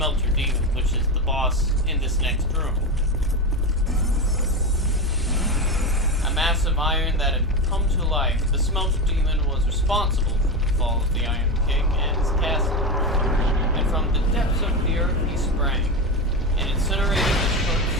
Demon, which is the boss in this next room. A massive iron that had come to life, the Smelter Demon was responsible for the fall of the Iron King and his castle. And from the depths of the earth he sprang, and incinerated the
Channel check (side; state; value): both; normal; correlation 0.18